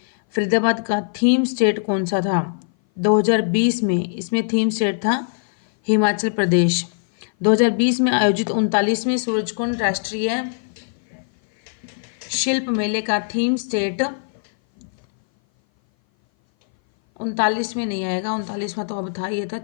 फरीदाबाद का थीम स्टेट कौन सा था? 2020 में इसमें थीम स्टेट था हिमाचल प्रदेश। 2020 में आयोजित 39वें सूरजकुंड राष्ट्रीय शिल्प मेले का थीम स्टेट 39 में नहीं आएगा, 39वां तो अब था, ये था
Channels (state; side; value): silent; right; 58 dB below the other